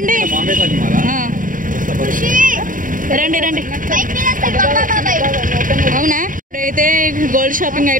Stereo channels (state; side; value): late; left; 0.39 ms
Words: రండి రండి. అవునా, ఇప్పుడైతే గోల్డ్ షాపింగ్